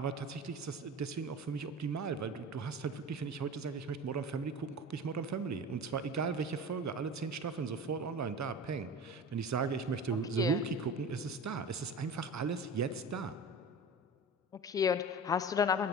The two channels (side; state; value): both; normal; correlation 0.33